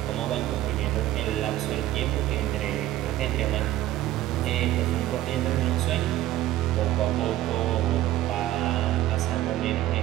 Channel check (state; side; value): quieter; left; 14.3 dB